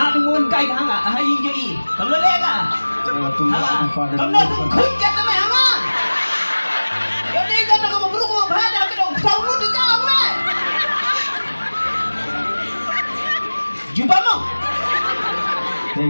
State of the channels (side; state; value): both; inverted; correlation -1.00